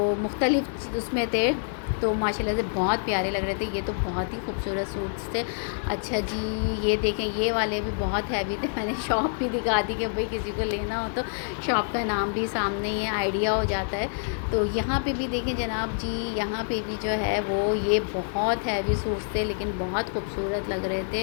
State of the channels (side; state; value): right; silent; digital silence